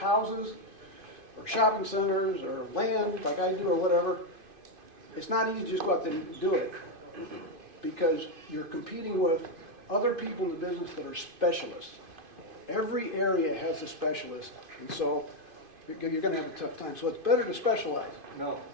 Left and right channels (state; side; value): late; left; 2.5 ms